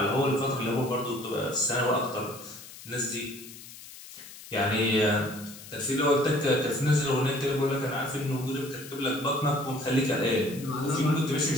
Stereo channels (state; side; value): noise; left; hiss, 16 dB below the sound